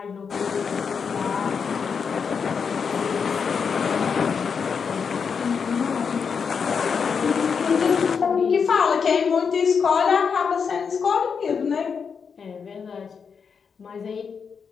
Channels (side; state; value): right; quieter; 6.1 dB